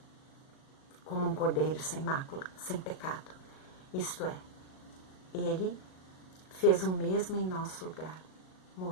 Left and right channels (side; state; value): right; late; 38 ms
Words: como um cordeiro sem mácula, sem pecado. Isto é, ele fez o mesmo em nosso lugar,